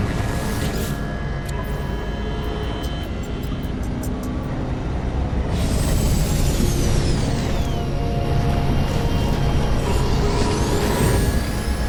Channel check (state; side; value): identical; both; correlation 1.00